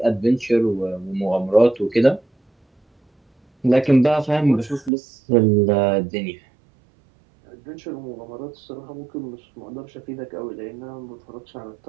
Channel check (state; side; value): drops out; left; at 4.9 s